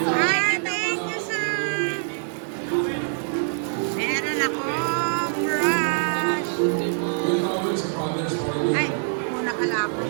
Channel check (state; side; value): silent; left; 62 dB below the other